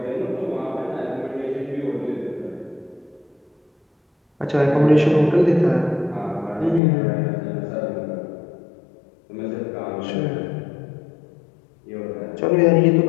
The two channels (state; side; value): drops out; right; at 6.8 s